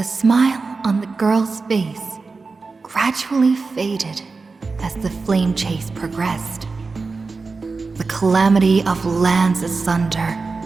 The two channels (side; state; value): left; quieter; 4.2 dB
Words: smile on the girl's face gradually faded as the flame chase progressed. The calamity of lands asunder